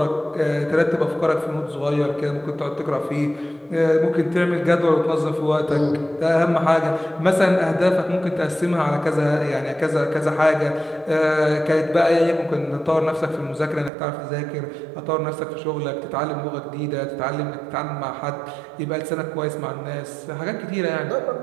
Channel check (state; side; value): drops out; left; at 13.9 s